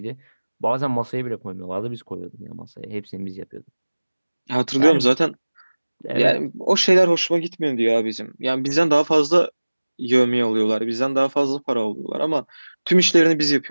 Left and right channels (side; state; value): both; inverted; correlation -1.00